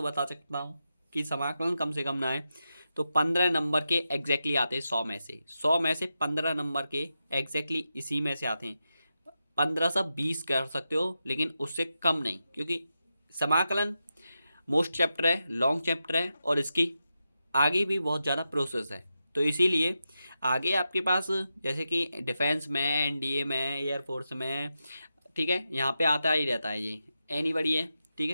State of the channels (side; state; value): both; inverted; correlation -0.89